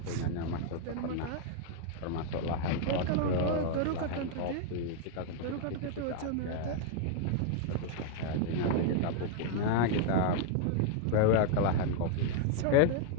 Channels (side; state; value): both; different; correlation 0.00